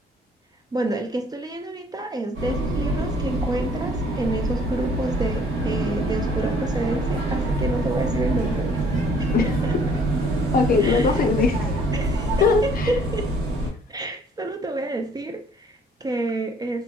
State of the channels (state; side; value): normal; both; correlation 0.59